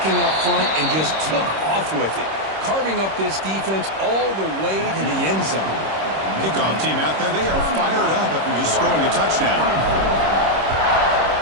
up front and just took off with it, carving up this defense all the way to the end zone. Kickoff team out there, they are fired up after just scoring a touchdown.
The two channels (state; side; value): late; left; 26 ms